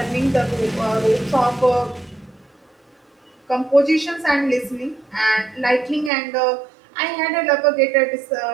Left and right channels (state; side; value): drops out; left; at 6.1 s